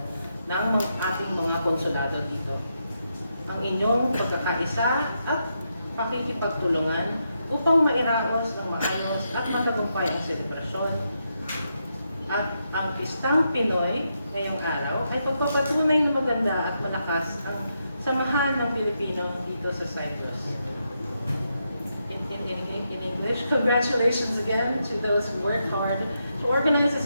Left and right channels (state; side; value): inverted; both; correlation -0.83